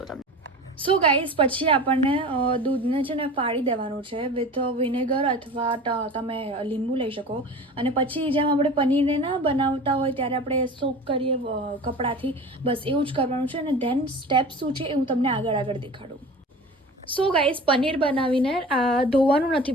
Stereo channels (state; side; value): normal; both; correlation 0.37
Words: તમને. સો ગાઈઝ, પછી આપણને દૂધને છે ને ફાડી દેવાનું છે વિથ વિનેગર અથવા તમે લીંબુ લઈ શકો, અને પછી જેમ આપણે પનીરને ના બનાવતા હોય ત્યારે આપણે સોક કરીએ કપડાથી, બસ એવું જ કરવાનું છે. અને ધેન સ્ટેપ શું છે એ હું તમને આગળ દેખાડું. સો ગાઈઝ, પનીર બનાવીને ધોવાનું નથી